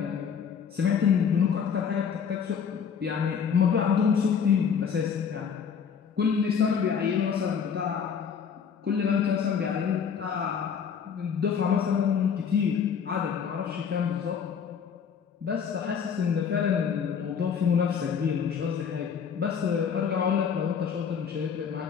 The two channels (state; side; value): quieter; right; 7.1 dB